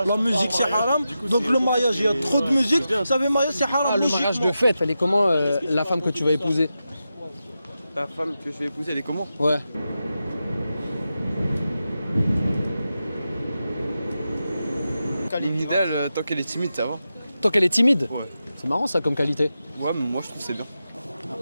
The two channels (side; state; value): both; inverted; correlation -0.90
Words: La musique c'est haram. Donc le mariage, il y a trop de musique. Ça veut mariage c'est haram. Ah, le mariage de fête, elle est comment la femme que tu vas épouser? La femme que je vais épouser, elle est comment? Ouais. L'idéal, tant qu'elle est timide, ça va. Tant qu'elle est timide? Ouais. C'est marrant ça comme qualité. Ouais, mais moi je trouve que c'est bien.